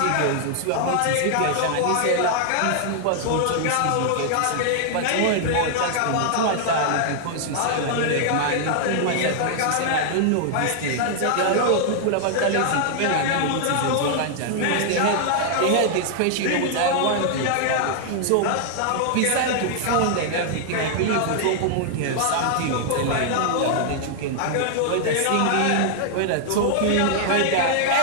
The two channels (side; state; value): both; different; correlation -0.01